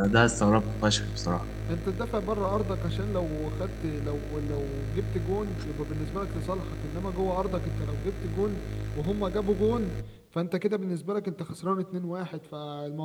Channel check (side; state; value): both; identical; correlation 1.00